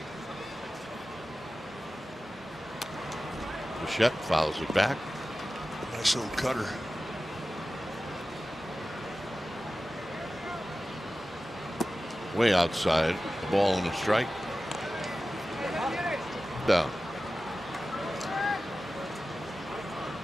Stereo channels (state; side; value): normal; both; correlation 0.95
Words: Bichette fouls it back. Nice little cutter. Way outside. A ball and a strike. Down.